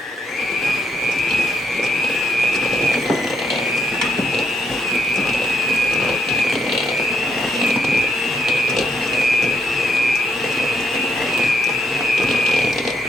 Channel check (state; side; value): normal; both; correlation 0.75